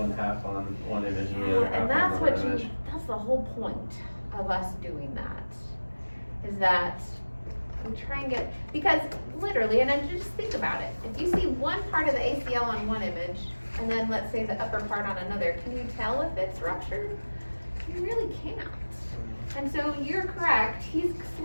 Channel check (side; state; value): both; inverted; correlation -1.00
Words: half on one image and the other half And on that's another what image? that's the whole point of us doing that, is that we try and get, because literally, and then just think about it, if you see one part of the ACL on one image, and then let's say the upper part on another, can you tell if it's ruptured? You really can't. And so you're correct, he's